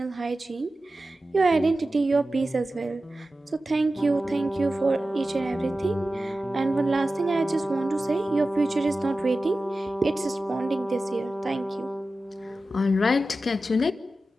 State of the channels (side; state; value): both; normal; correlation 0.94